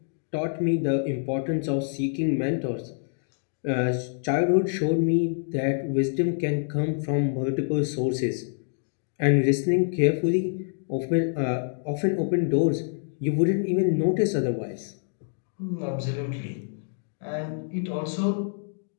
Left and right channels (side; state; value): right; silent; digital silence